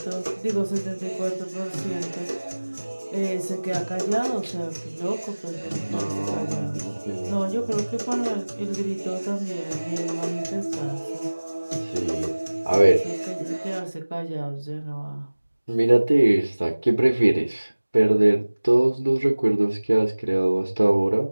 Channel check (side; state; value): both; inverted; correlation -1.00